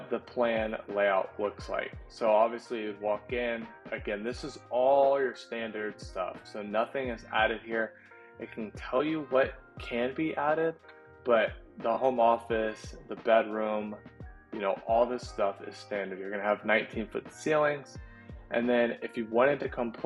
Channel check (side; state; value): both; identical; correlation 1.00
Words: the plan layout looks like. So obviously you'd walk in, again this is all your standard stuff, so nothing is added here. It can tell you what can be added, but the home office, the bedroom, you know, all this stuff is standard. You're gonna have 19-foot ceilings, and then if you wanted to come